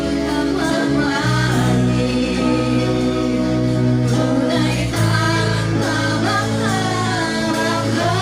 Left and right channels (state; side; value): identical; both; correlation 1.00